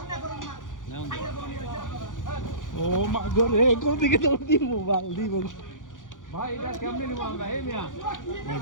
ও মা গো রে কোন দিকে দৌড় দি মোবাইল দিব ভাই এটা কেমনে নিব আমরা এই মিয়া ভাই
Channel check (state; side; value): late; right; 0.88 ms